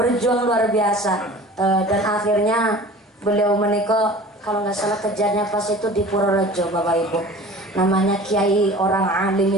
luar biasa. Dan akhirnya beliau menikah, kalau nggak salah kejadiannya pas itu di Purworejo Bapak Ibu. Namanya kiai orang alim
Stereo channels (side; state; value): both; normal; correlation 0.42